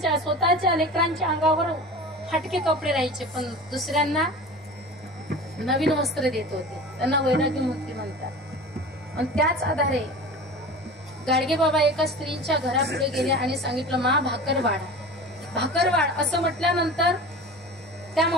लेकरांच्या अंगावर फाटके कपडे राहायचे, पण दुसऱ्यांना नवीन वस्त्र देत होते. त्यांना वैराग्यमूर्ती म्हणतात. आणि त्याच आधारे गाडगे बाबा एका स्त्रीच्या घरापुढे गेले आणि सांगितलं, मा भाकर वाढ असं म्हटल्यानंतर त्या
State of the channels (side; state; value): both; normal; correlation 0.35